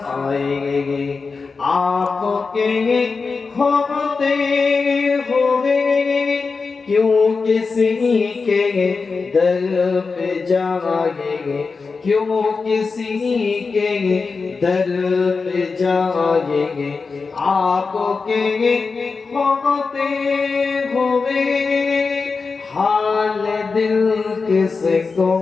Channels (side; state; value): right; quieter; 4.6 dB